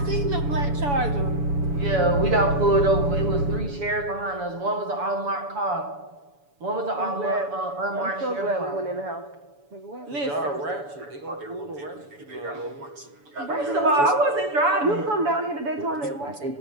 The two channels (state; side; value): late; left; 7.0 ms